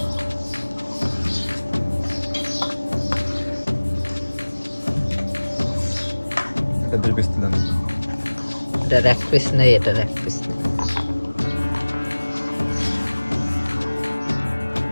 এটার এক পিস নেই, এটার এক পিস নেই।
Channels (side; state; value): both; inverted; correlation -1.00